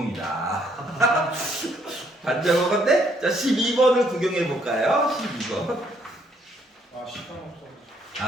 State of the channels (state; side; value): normal; both; correlation 0.69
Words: 반장어건데? 자, 12번을 구경해볼까요? 12번. 시간